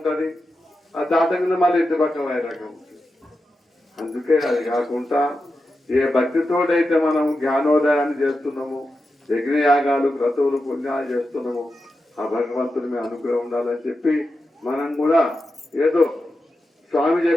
ఆ దాటకుండా మళ్ళీ ఇంటి పక్కన వైరాగ్యం ఉంటుంది. అందుకే అది కాకుండా ఏ భక్తితోటైతే మనం జ్ఞానోదయాన్ని చేస్తున్నాము, యజ్ఞయాగాలు క్రతువులు పుణ్యాలు చేస్తున్నాము, ఆ భగవంతుని మీ అనుగ్రహం ఉండాలని చెప్పి మనం కూడా ఏదో స్వామి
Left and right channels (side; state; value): both; normal; correlation 0.90